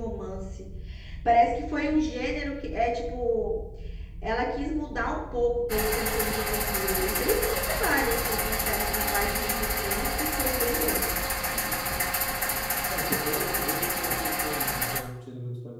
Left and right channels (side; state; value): both; identical; correlation 1.00